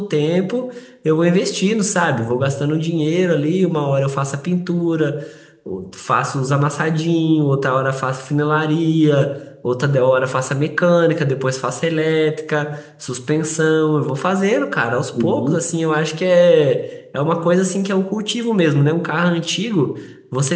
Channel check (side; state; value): both; identical; correlation 1.00